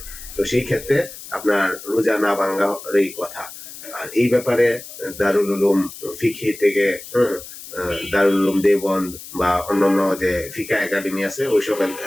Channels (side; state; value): left; noise; hiss, 14 dB below the sound